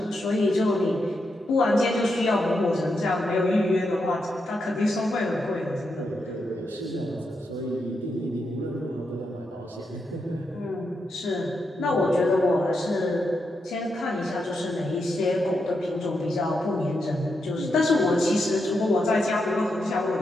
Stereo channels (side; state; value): both; normal; correlation 0.84